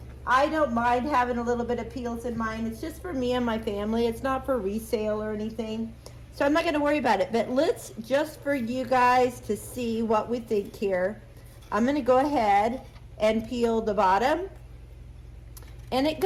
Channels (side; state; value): both; identical; correlation 1.00